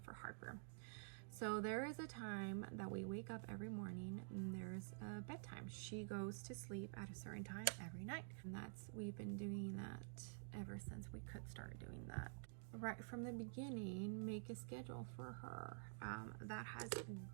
for Harper. So there is a time that we wake up every morning and there's a bedtime. She goes to sleep at a certain time every night. And we've been doing that ever since we could start doing that. Right from the beginning, make a schedule for her. That has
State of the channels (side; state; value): left; silent; digital silence